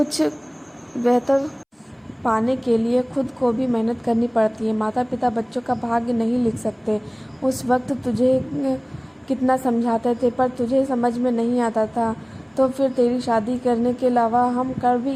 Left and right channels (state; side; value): identical; both; correlation 1.00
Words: बेहतर पाने के लिए खुद को भी मेहनत करनी पड़ती है। माता पिता बच्चों का भाग्य नहीं लिख सकते। उस वक्त तुझे कितना समझाते थे पर तुझे समझ में नहीं आता था, तो फिर तेरी शादी करने के अलावा हम कर भी